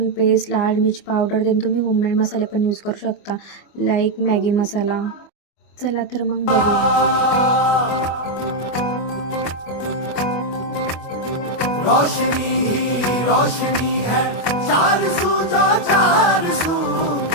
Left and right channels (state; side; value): late; right; 25 ms